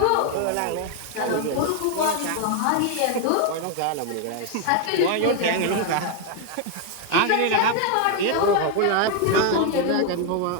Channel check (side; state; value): both; different; correlation 0.01